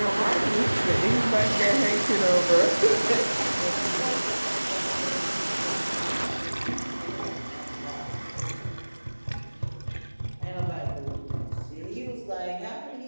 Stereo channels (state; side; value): inverted; both; correlation -1.00